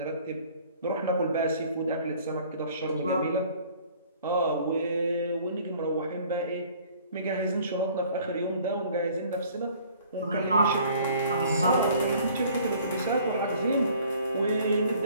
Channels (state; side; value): inverted; both; correlation -0.54